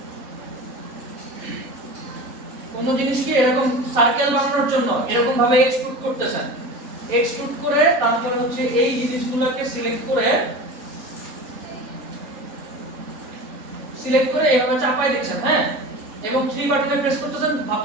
কোন জিনিসকে এরকম সার্কেল বানানোর জন্য এরকম ভাবে এক্সট্রুড করতেছেন, এক্সট্রুড করে তারপরে হচ্ছে এই জিনিসগুলোকে সিলেক্ট করে এইভাবে চাপাই দিচ্ছেন, হ্যাঁ, এবং 3 বাটনে প্রেস করতেছেন,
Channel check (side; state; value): left; late; 4.0 ms